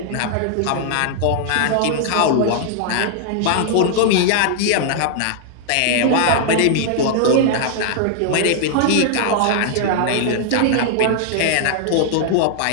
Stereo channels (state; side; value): different; both; correlation -0.01